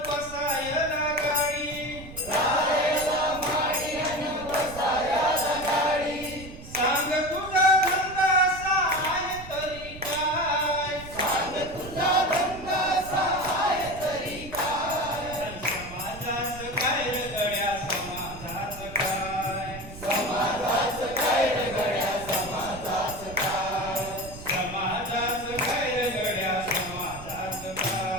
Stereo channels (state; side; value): noise; right; rumble, 14 dB below the sound